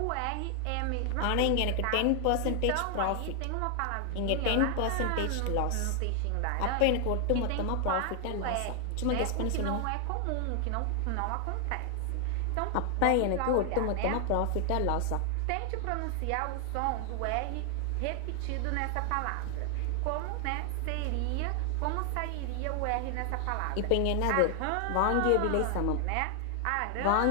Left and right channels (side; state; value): both; different; correlation 0.00